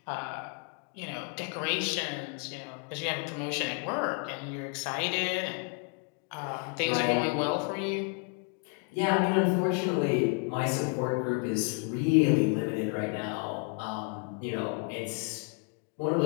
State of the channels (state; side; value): quieter; right; 36.6 dB